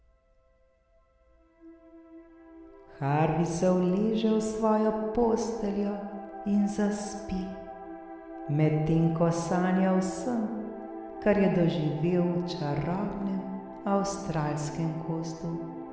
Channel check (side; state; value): both; identical; correlation 1.00